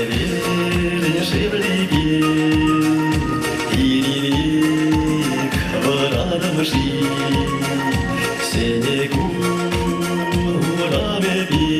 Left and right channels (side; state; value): both; identical; correlation 1.00